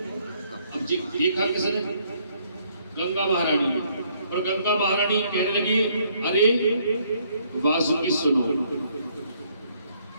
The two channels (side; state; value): both; inverted; correlation -0.67